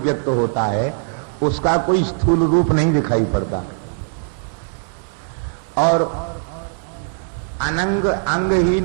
होता है, उसका कोई स्थूल रूप नहीं दिखाई पड़ता। और अनंग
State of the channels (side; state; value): left; silent; 66 dB below the other